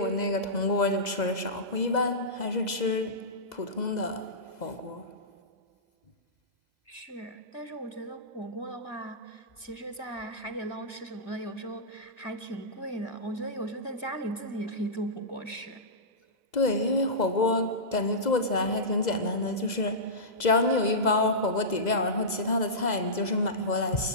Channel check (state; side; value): late; right; 2.0 ms